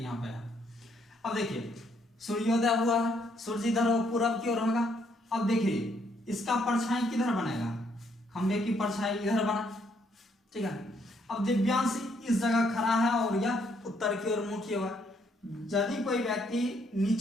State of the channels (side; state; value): both; normal; correlation 0.71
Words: यहाँ पे है। अब देखिए सूर्योदय हुआ, सूर्य इधर पूरब की ओर होगा। अब देखिए इसका परछाई किधर बनेगा, खंभे की परछाई इधर बना, ठीक है। अब दिव्यांश इस जगह खड़ा है और यह उत्तर की ओर मुंह किया हुआ है। यदि कोई व्यक्ति